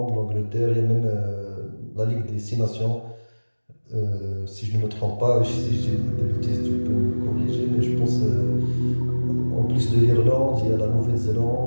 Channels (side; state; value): both; inverted; correlation -1.00